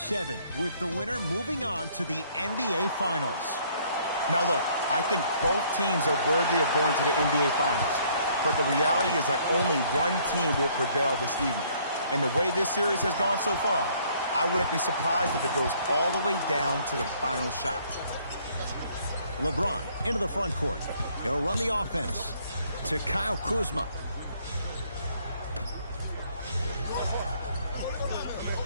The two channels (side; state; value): both; inverted; correlation -0.63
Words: with the winner moving on to the NBA Finals. Now, look, I think both teams are worthy of going to the NBA Finals. But the reality is that only one team will prevail this evening. And the way this series has gone so far, I wouldn't be surprised if it goes all the way down to the final shot. LeBron into the front court. He'll run the offense to Kyle Kuzma.